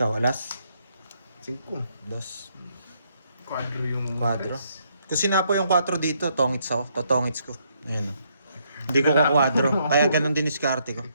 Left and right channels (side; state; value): both; inverted; correlation -0.73